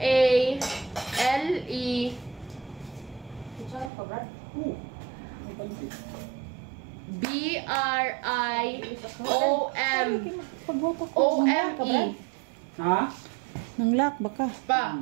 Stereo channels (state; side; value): drops out; left; at 3.9 s